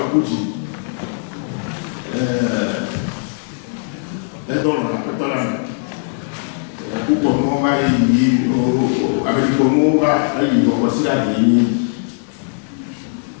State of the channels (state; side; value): silent; right; 67 dB below the other